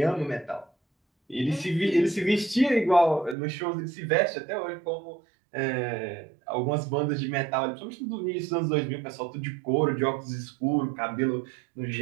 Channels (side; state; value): left; drops out; at 3.4 s